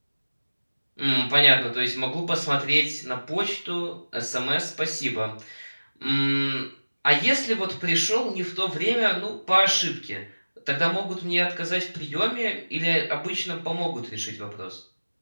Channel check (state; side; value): inverted; both; correlation -1.00